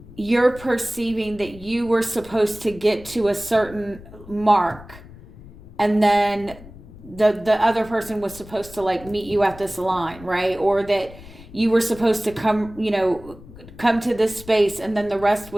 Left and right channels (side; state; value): left; noise; rumble, 19 dB below the sound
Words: you're perceiving that you were supposed to get to a certain mark, and then the other person was supposed to like meet you at this line, right? Or that you were supposed to come to this space, and then the rest